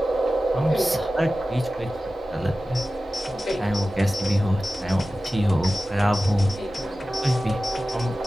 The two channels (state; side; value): normal; both; correlation 0.95